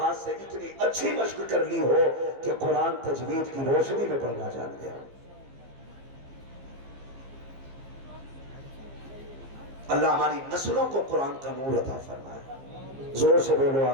سے اتنی اچھی مشق کر لی ہو کہ قرآن تجوید کی روشنی میں پڑھنا جان گیا۔ اللہ ہماری نسلوں کو قرآن کا نور عطا فرمائے، زور سے بولو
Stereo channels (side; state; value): left; late; 15 ms